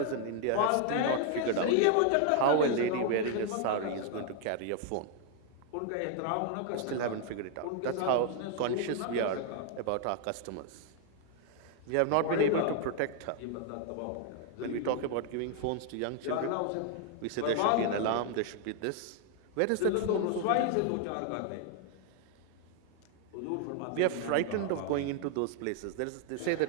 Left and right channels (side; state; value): both; different; correlation 0.00